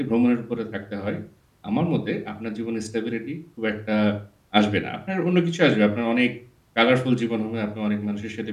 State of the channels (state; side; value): identical; both; correlation 1.00